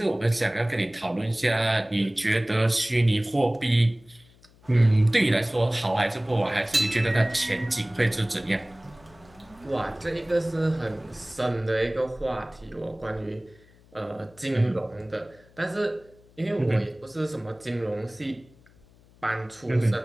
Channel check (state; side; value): noise; left; hum, 28 dB below the sound